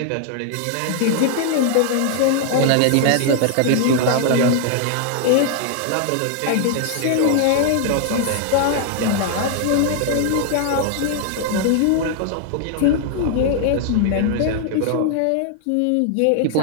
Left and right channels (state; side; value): different; both; correlation 0.00